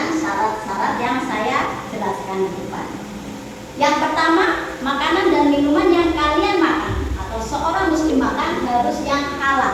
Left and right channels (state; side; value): identical; both; correlation 1.00